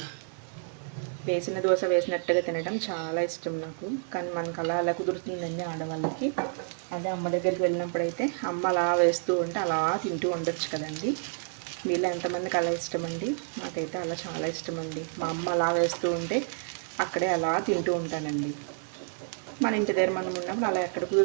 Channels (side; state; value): left; silent; 58 dB below the other